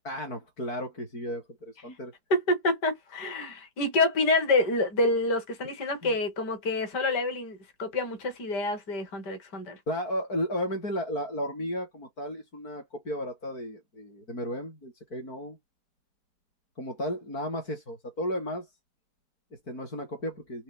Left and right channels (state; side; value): late; right; 5.0 ms